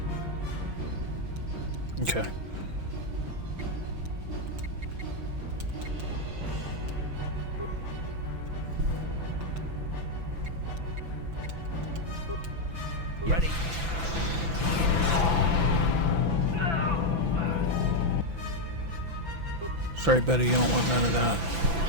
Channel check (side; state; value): left; late; 6.0 ms